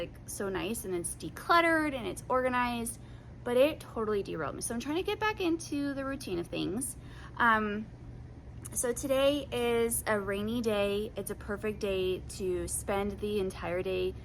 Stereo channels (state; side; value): identical; both; correlation 1.00